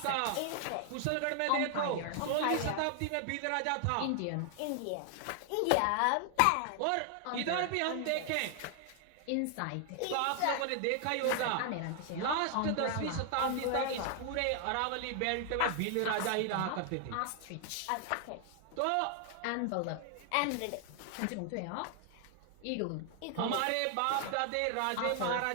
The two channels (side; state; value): both; different; correlation 0.00